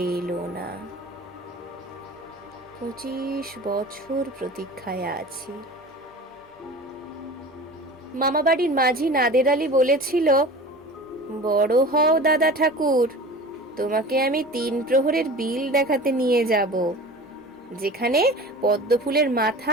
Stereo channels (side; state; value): both; normal; correlation 0.37